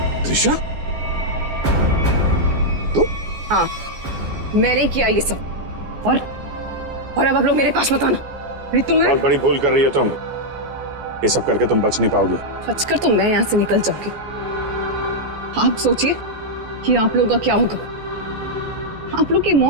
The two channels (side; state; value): left; late; 14 ms